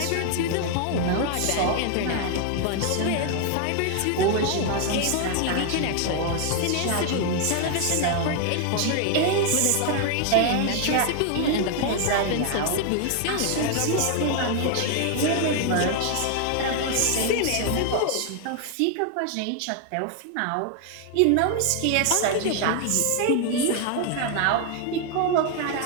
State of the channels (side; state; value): both; different; correlation 0.00